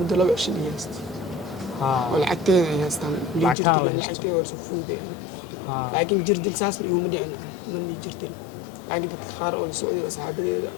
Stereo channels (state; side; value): drops out; right; at 3.6 s